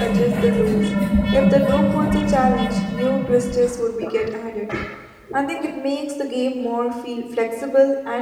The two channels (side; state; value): both; identical; correlation 1.00